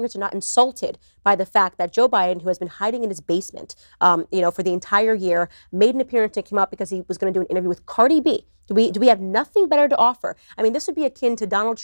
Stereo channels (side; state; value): both; inverted; correlation -1.00